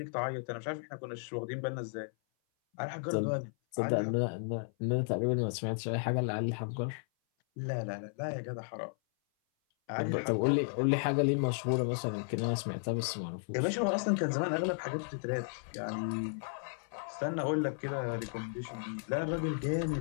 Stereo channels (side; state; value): right; silent; 55 dB below the other